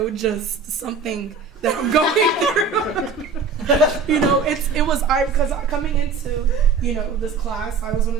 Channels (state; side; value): quieter; left; 4.9 dB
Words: just something that I'm going through. You know, because coming into, you know, this class, I was one